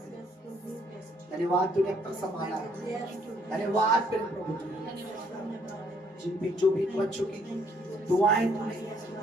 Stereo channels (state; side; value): normal; both; correlation 0.66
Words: लिए। धन्यवाद तूने अब तक संभाला है, धन्यवाद तेरे प्रभु जी, जिन भी जो भी बच्चों की दुआएं तूने